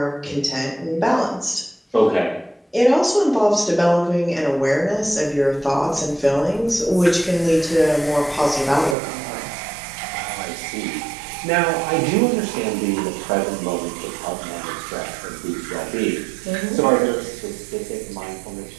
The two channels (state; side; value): drops out; left; at 9.0 s